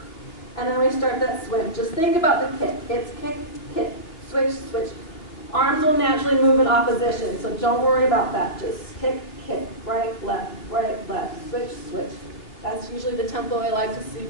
And then we start that swim. Just think about the kick. It's kick, kick, switch, switch. Arms will naturally move in opposition, so don't worry about that. Just kick, kick, right, left, switch, switch. That's usually the tempo I like to see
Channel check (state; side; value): late; right; 3.0 ms